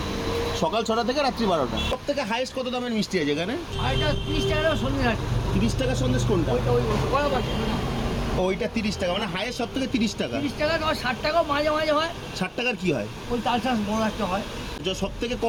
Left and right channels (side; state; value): both; identical; correlation 1.00